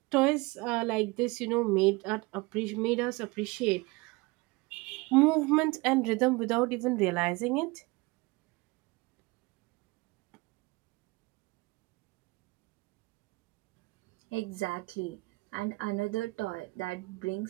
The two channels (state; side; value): quieter; left; 24.2 dB